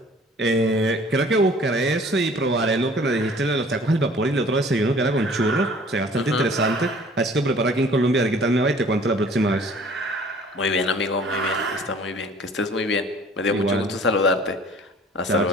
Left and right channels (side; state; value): both; normal; correlation 0.51